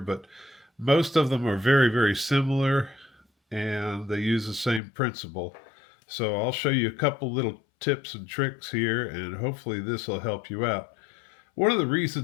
most of them are very, very similar, and they use the same principle. So I'll show you a couple little tips and tricks here, and hopefully this will help you out. One of the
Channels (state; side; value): drops out; right; at 4.8 s